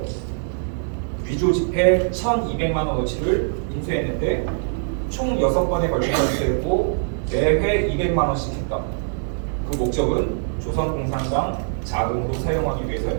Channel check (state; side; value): silent; left; digital silence